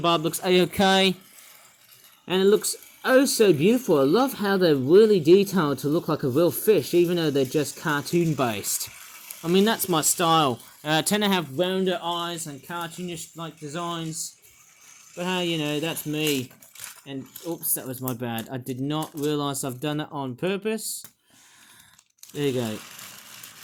looks a-okay, and it looks oh so beautiful. I love how they're really detailed to look like a real fish, even though they're just cartoon based. I mean, that's my style. I tend to have rounder eyes and cartoonish like designs, but hey, you know, that's me. And oops, that was my bad. I did not realise I've done it on purpose. There you go.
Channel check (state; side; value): identical; both; correlation 1.00